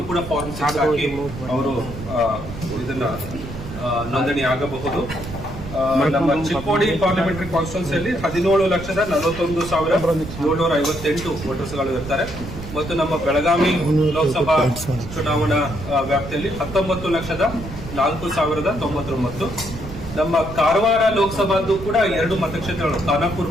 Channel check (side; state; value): right; noise; rumble, 11 dB below the sound